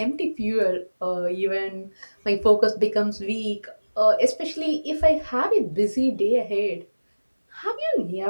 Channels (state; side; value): inverted; both; correlation -1.00